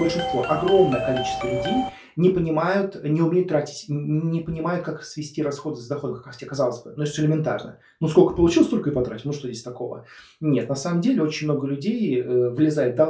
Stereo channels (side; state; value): both; identical; correlation 1.00